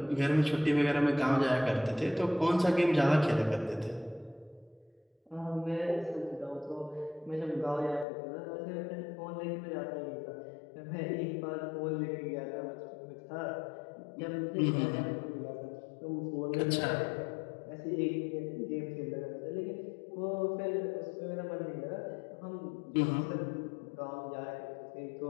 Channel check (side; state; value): right; drops out; at 8.1 s